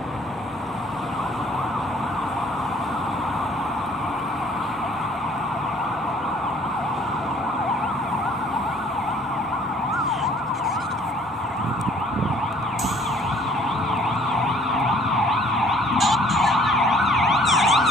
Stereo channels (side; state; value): both; normal; correlation 0.57